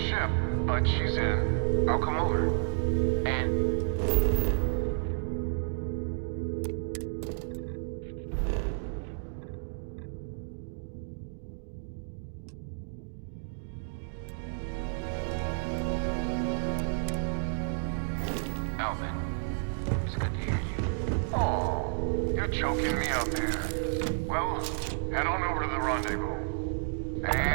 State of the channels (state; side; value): silent; left; digital silence